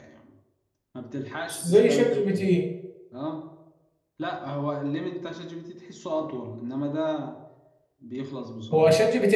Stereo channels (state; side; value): identical; both; correlation 1.00